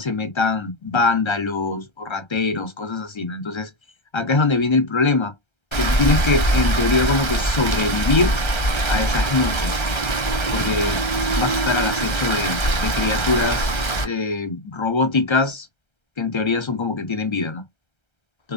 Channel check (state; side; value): late; right; 1.3 ms